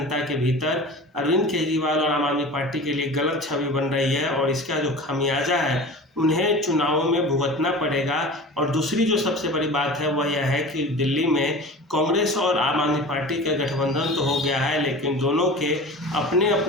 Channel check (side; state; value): both; normal; correlation 0.36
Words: के भीतर अरविंद केजरीवाल और आम आदमी पार्टी के लिए गलत छवि बन रही है और इसका जो खामियाजा है उन्हें चुनावों में भुगतना पड़ेगा। और दूसरी जो सबसे बड़ी बात है वह यह है कि दिल्ली में कांग्रेस और आम आदमी पार्टी का गठबंधन तो हो गया है, लेकिन दोनों के अपने